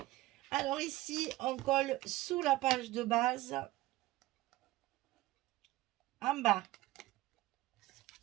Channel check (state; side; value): quieter; left; 17.6 dB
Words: Alors ici, on colle sous la page de base, en bas,